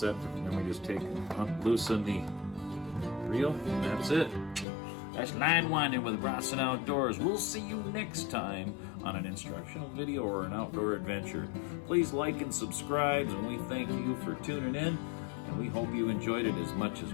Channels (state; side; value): drops out; right; at 4.7 s